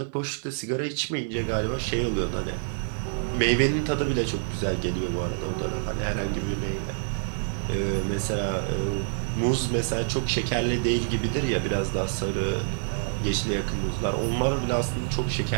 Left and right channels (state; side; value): silent; left; 60 dB below the other